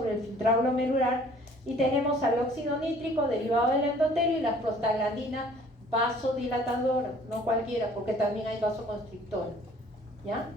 el filtrado glomerular, y tenemos al óxido nítrico derivado del endotelio y las prostaglandinas vasodilatadoras, no cualquiera, porque también hay vasoconstrictores, ¿ya?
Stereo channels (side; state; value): both; normal; correlation 0.54